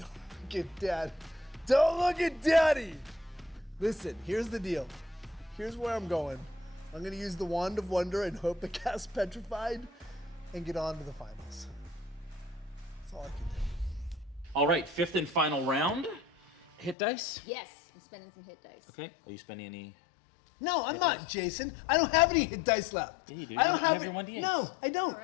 look at Dad. Don't look at Daddy. Listen, here's the deal. Here's where I'm going. I'm gonna use the Wand of Wonder and hope to cast Petrified, and get on to the finals. That's all I can do. All right, 5th and final round. Hit dice. Yes, I'm spending some hit dice. Okay. Are you spending any? No, I'm not, Jason. I don't have any hit dice left. Yeah, you do. I don't You have it- your 1d8s. No, I don't. All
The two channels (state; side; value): drops out; right; at 16.9 s